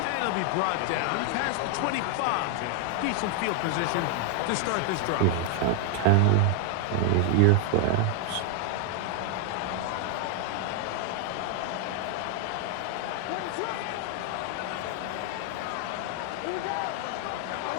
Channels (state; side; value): different; both; correlation 0.00